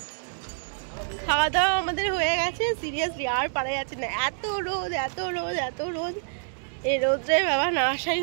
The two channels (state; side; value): silent; left; digital silence